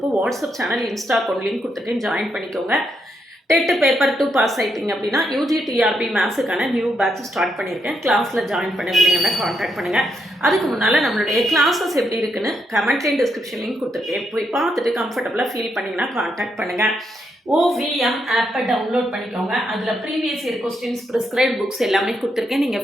WhatsApp channel, Insta account link கொடுத்துருக்கேன், ஜாயின் பண்ணிக்கோங்க. டெட் பேப்பர் 2 பாஸ் ஆகிட்டிங்க அப்படின்னா யூஜி டிஆர்பி மேத்ஸுக்கான நியூ பேட்ச் ஸ்டார்ட் பண்ணியிருக்கேன். கிளாஸில் ஜாயின் பண்ணுவீங்கன்னா காண்டாக்ட் பண்ணுங்கள். அதுக்கு முன்னால் நம்மளுடைய கிளாஸஸ் எப்படி இருக்குன்னு கமெண்ட்லேயும் டிஸ்கிரிப்ஷன் லிங்க் கொடுத்துருக்கேன், போய் பார்த்துட்டு கம்ஃபர்டபுளாக ஃபீல் பண்ணிங்கன்னா காண்டாக்ட் பண்ணுங்கள். OVM ஆப்பை டவுன்லோட் பண்ணிக்கோங்க. அதில் previous year questions, prescribed books எல்லாமே கொடுத்துருக்கேன்,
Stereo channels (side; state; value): both; normal; correlation 0.79